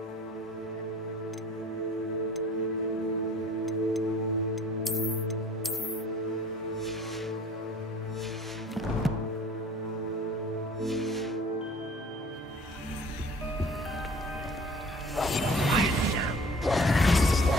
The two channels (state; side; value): normal; both; correlation 0.49